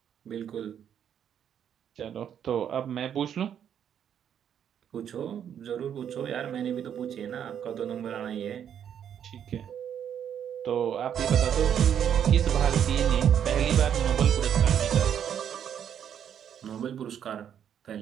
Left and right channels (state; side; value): quieter; left; 9.0 dB